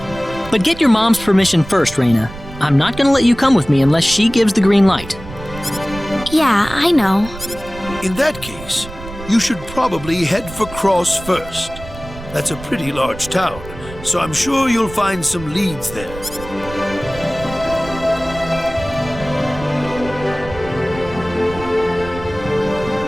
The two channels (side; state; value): right; noise; rumble, 14 dB below the sound